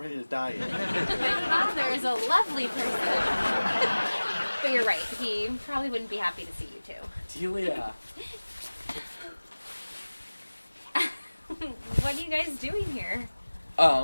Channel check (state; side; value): inverted; both; correlation -1.00